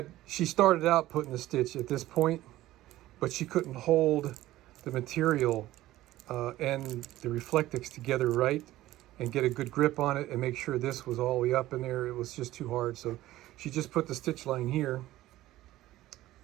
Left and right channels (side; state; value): left; quieter; 15.7 dB